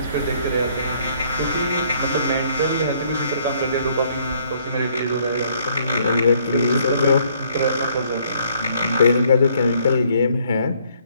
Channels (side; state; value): both; inverted; correlation -0.65